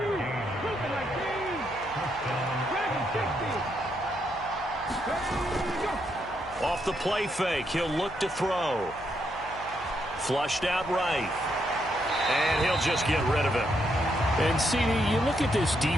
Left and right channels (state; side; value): noise; left; hum, 17 dB below the sound